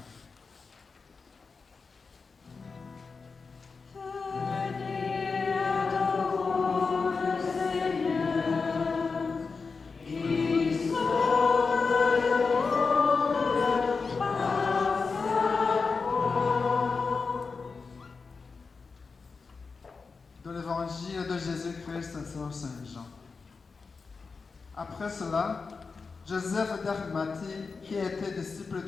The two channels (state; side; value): quieter; right; 4.7 dB